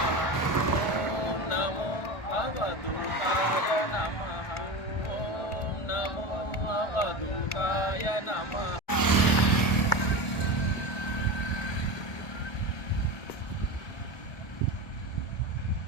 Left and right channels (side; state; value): right; late; 1.4 ms